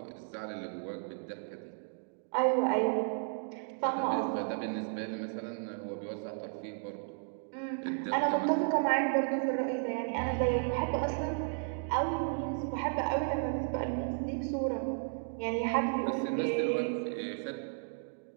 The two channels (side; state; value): left; silent; digital silence